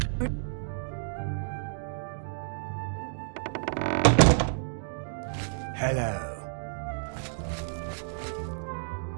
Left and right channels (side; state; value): left; silent; digital silence